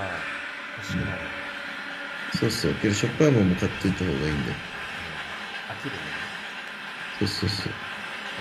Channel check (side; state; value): both; identical; correlation 1.00